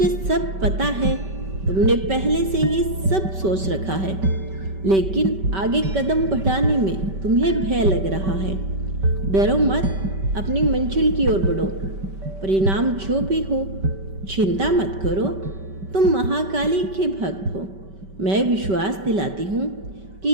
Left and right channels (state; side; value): late; left; 5.2 ms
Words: सब पता है। तुमने पहले से ही सब सोच रखा है, लेकिन आगे कदम बढ़ाने में तुम्हें भय लग रहा है। डरो मत, अपनी मंजिल की ओर बढ़ो। परिणाम जो भी हो, चिंता मत करो। तुम महाकाली के भक्त हो। मैं विश्वास दिलाती हूँ